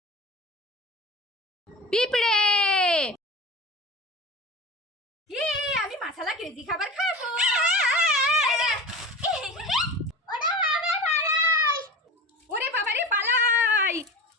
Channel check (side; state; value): both; normal; correlation 0.32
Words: পিঁপড়ে! আমি মশলা ক্রেজি খাবার খাবো। ওরা বাবা পালাই। ওরে বাবারে পালাই!